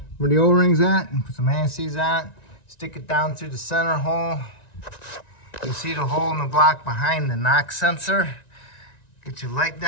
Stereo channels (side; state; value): right; late; 1.9 ms